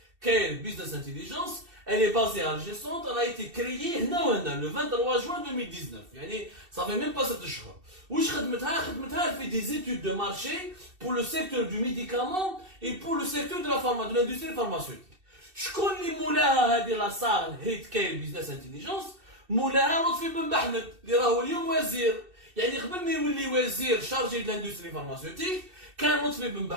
Care Business Intelligence, elle est basée à Alger Centre, elle a été créée le 23 juin 2019. Ça fait même pas 7 jours. Wesh خدمتها elle fait des études de marché pour le secteur du médicament et pour le secteur de l'industrie pharmaceutique. شكون اللي مولاها هذه لا صار هيت كاين بيزنس انتيليجنس؟ مولاها لطفي بن محمد اللي راهو اليوم وزير. قبل ما يولي وزير chargé de l'industrie pharmaceutique, quand Lotfi Ben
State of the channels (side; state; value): left; late; 2.7 ms